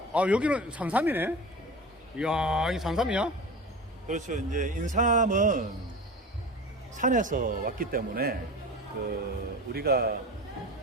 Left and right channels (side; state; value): both; normal; correlation 0.33